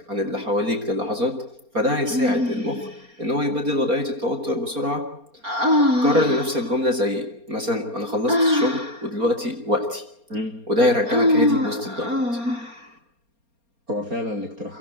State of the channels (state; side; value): late; left; 4.3 ms